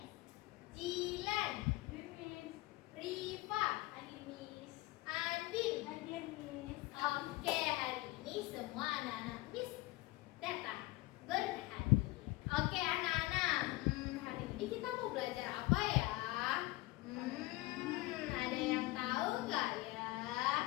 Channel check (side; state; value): right; quieter; 20.1 dB